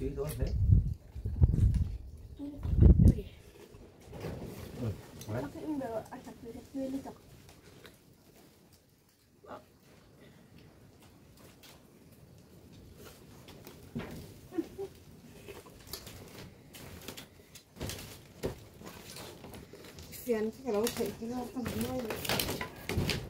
thôi đấy Phiền cái đó phải cái nó không nói được.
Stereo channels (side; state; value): both; identical; correlation 1.00